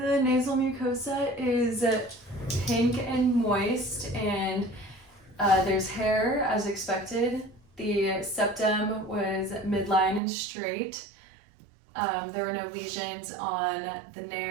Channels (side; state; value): left; drops out; at 10.2 s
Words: the nasal mucosa is pink and moist, and there's hair as expected. The septum was midline and straight. There were no lesions on the